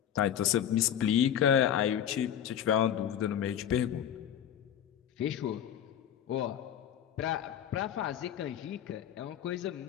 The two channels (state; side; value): quieter; right; 9.8 dB